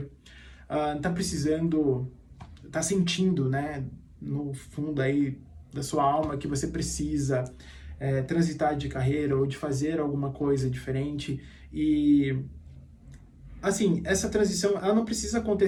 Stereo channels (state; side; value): identical; both; correlation 1.00